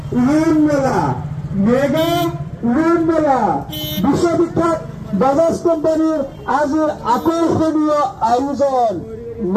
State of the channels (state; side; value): identical; both; correlation 1.00